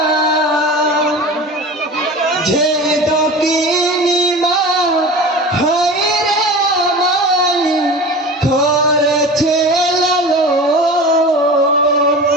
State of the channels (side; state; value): both; normal; correlation 0.34